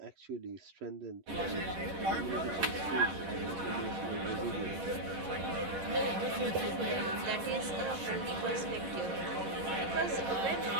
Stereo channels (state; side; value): late; left; 10 ms